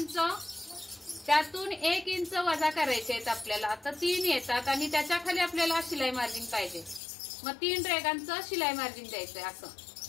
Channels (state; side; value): drops out; right; at 7.0 s